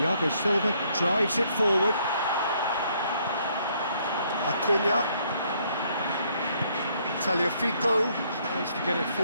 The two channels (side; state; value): both; inverted; correlation -0.68